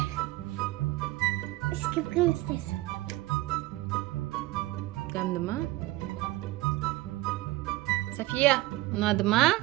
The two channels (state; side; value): quieter; left; 18.5 dB